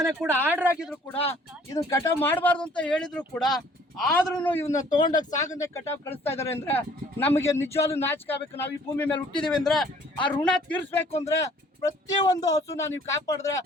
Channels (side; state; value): both; normal; correlation 0.56